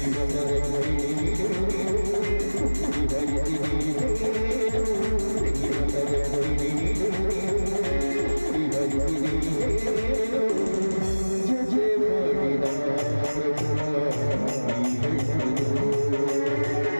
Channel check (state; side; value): inverted; both; correlation -1.00